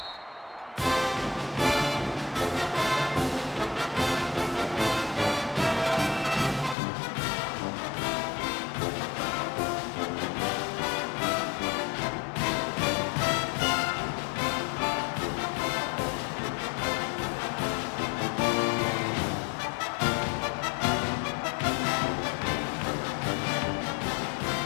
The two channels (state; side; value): drops out; right; at 6.8 s